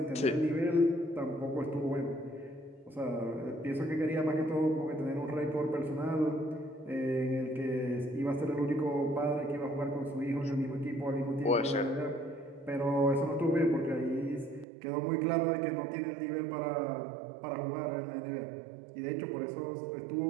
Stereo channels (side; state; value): left; drops out; at 14.7 s